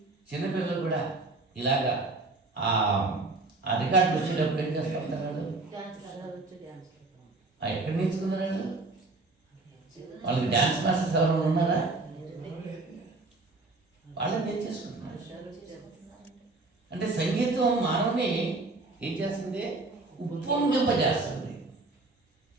చిన్నపిల్లలు కూడా ఇలాగా ఆ రికార్డు వచ్చేటప్పుడు ఏం చేస్తుంటారు వాళ్ళు? ఎక్కడ నేర్చుకున్నారు వాళ్ళు? వాళ్ళకి డ్యాన్స్ మాస్టర్స్ ఎవరైనా ఉన్నారా? వాళ్ళని నేర్చేసుకుంటున్నారు. అంటే సంగీతం మానవుని ఏం చేస్తుంది? ఉప్పొంగింపజేస్తుంది.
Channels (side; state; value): left; quieter; 3.3 dB